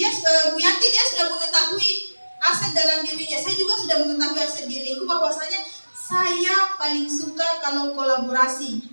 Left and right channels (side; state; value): both; inverted; correlation -1.00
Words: Bu Yanti dia sudah mengetahui aset dalam dirinya. Saya juga sudah mengetahui aset diriku bahwasanya saya paling suka kalau kolaborasi.